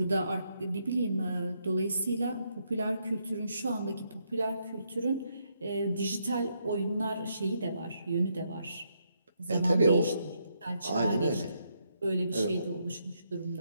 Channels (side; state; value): both; inverted; correlation -0.77